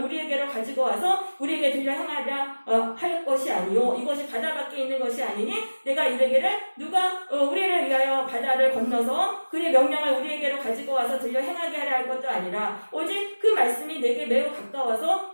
우리에게로 가지고 와서 우리에게 들려 행하려 할 것이 아니요 이것이 바다 밖에 있는 것이 아니니 내가 이르기를 누가 우리를 위하여 바다를 건너서 그의 명령을 우리에게로 가지고 와서 들려 행하게 하려 할 것도 아니라 오직 그 말씀이 내게 매우 가까워서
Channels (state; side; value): inverted; both; correlation -1.00